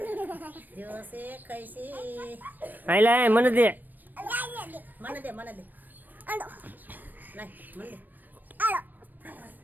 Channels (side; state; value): left; late; 0.089 ms